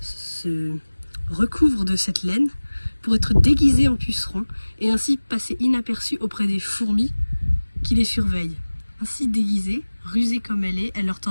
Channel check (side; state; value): both; inverted; correlation -1.00